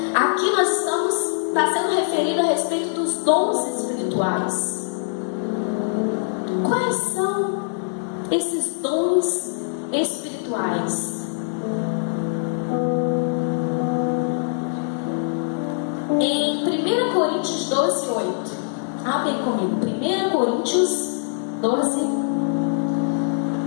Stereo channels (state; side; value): silent; right; 64 dB below the other